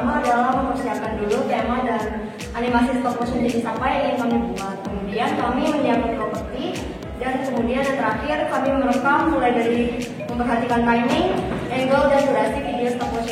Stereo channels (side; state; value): both; identical; correlation 1.00